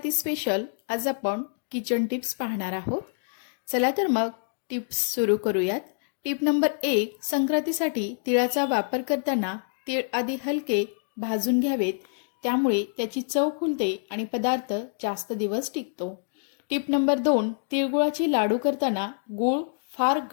स्पेशल आज आपण किचन टिप्स पाहणार आहोत. चला तर मग टिप्स सुरू करूयात. टिप नंबर 1, संक्रांतीसाठी तिळाचा वापर करताना तीळ आधी हलके भाजून घ्यावेत, त्यामुळे त्याची चव खुलते आणि पदार्थ जास्त दिवस टिकतो. टिप नंबर 2, तिळगुळाचे लाडू करताना गूळ फार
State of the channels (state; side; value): silent; right; digital silence